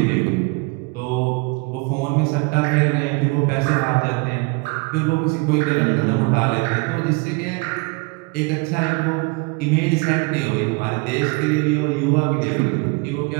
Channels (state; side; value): quieter; left; 29.1 dB